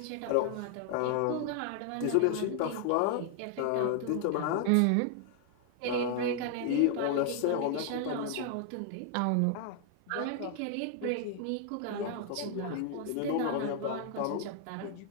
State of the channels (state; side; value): different; both; correlation 0.00